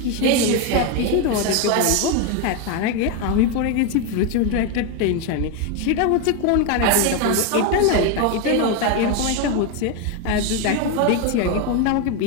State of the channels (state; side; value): different; both; correlation 0.02